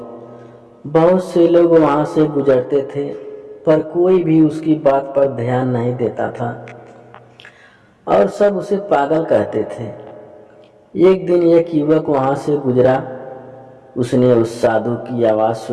बहुत से लोग वहां से गुजरते थे, पर कोई भी उसकी बात पर ध्यान नहीं देता था और सब उसे पागल कहते थे। एक दिन एक युवक वहां से गुजरा। उसने उस साधु की आवाज़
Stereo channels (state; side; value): identical; both; correlation 1.00